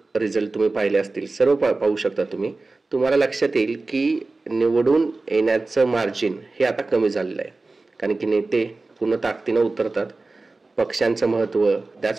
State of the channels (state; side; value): quieter; left; 3.4 dB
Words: रिझल्ट तुम्ही पाहिले असतील, सर्व पाहू शकता तुम्ही. तुम्हाला लक्षात येईल की निवडून येण्याचं मार्जिन हे आता कमी झालेलं आहे, कारण की नेते पूर्ण ताकदीनं उतरतात. पक्षांचं महत्त्व,